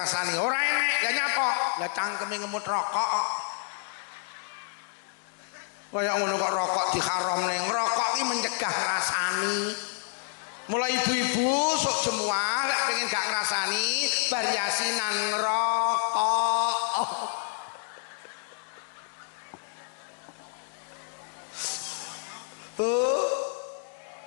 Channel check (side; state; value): right; silent; digital silence